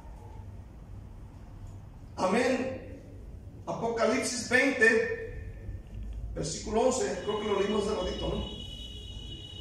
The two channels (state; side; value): identical; both; correlation 1.00